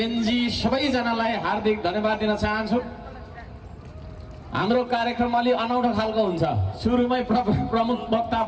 सबैजनालाई हार्दिक धन्यवाद दिन चाहन्छु। हाम्रो कार्यक्रम अलि अनौठो खालको हुन्छ। सुरुमै प्रमुख वक्ता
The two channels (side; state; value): both; identical; correlation 1.00